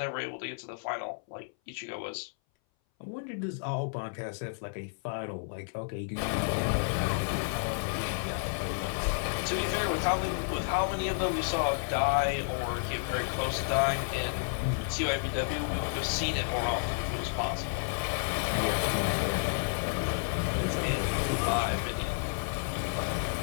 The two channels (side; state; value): right; silent; 57 dB below the other